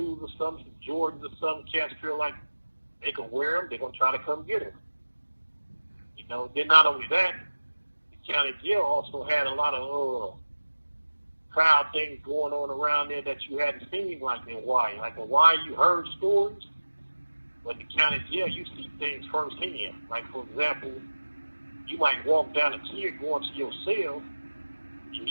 or something, some Jordans or something, cats feel like they can wear them, they're going to try to come get them. Then not only that, the county jail also had a lot of crowd things going on around there that you hadn't seen like in Hawaii. Like in Hawaii, you heard stories, but in the county jail, you see things firsthand. Like, for example, you might walk down a tier going to your cell, and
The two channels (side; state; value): both; inverted; correlation -1.00